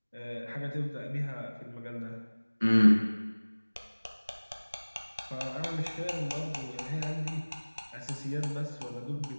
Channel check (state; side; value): inverted; both; correlation -1.00